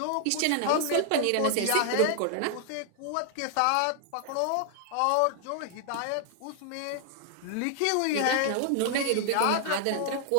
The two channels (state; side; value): different; both; correlation 0.00